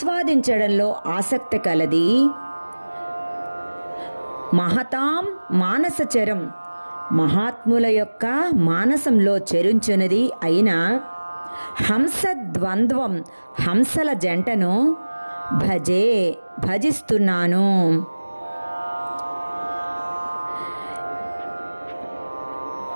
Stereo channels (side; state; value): both; inverted; correlation -1.00